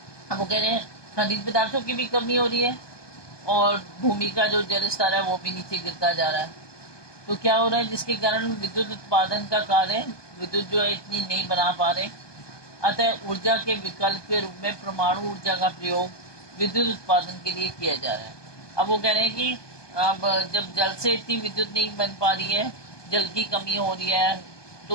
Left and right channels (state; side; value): late; right; 1.2 ms